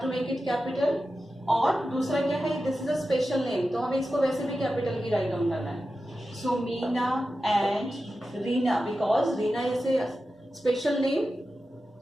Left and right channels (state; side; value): normal; both; correlation 0.92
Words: to make it capital. और दूसरा क्या है? This is a special name. तो हमें इसको वैसे भी capital की राइट डाउन करना है. So Meena and Reena because Reena is a special name,